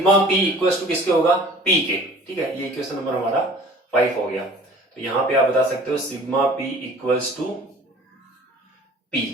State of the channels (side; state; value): both; normal; correlation 0.48